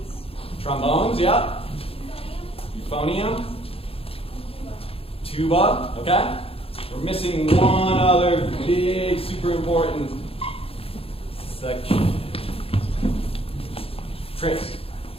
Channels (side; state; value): right; late; 0.27 ms